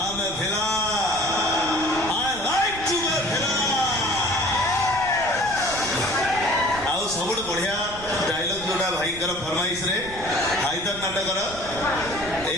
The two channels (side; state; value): right; noise; rumble, 14 dB below the sound